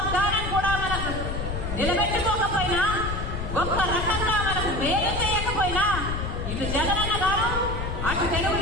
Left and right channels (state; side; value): noise; left; rumble, 4 dB below the sound